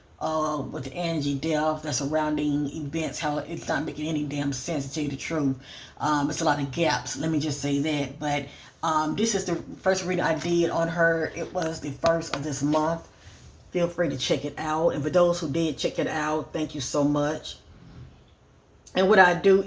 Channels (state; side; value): identical; both; correlation 1.00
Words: with the Angie death, the surrounding events, how it's not making any damn sense, to tell you the truth. It's a lot of gaps, let me just say that. But this is the first reading I did on her. It was the first of this month. Feel free to check it out. And for those who did check it out, thank you so much. And what I do